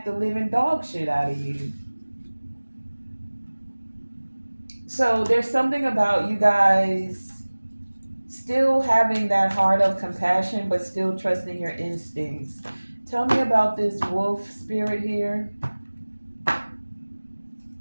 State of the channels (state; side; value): inverted; both; correlation -1.00